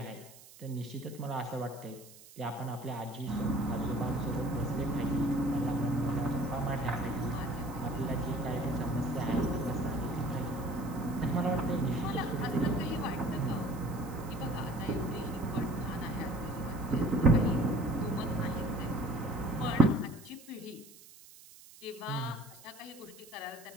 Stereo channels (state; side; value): noise; right; hiss, 20 dB below the sound